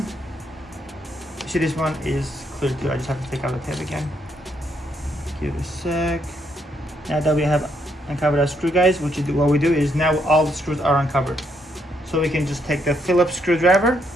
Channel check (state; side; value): normal; both; correlation 0.75